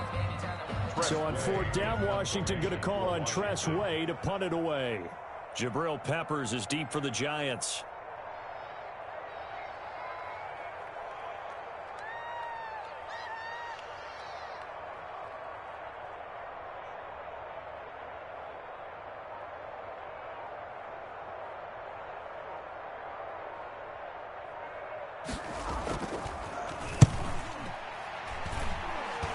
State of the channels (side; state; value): both; identical; correlation 1.00